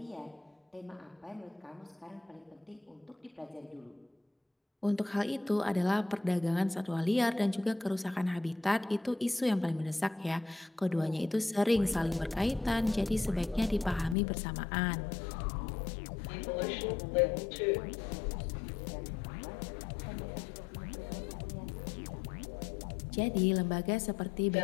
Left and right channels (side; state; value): right; drops out; at 14.2 s